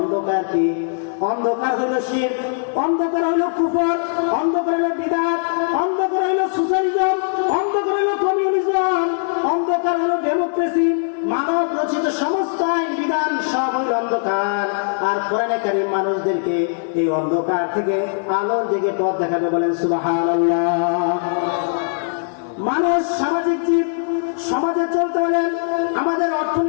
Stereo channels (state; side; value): silent; right; digital silence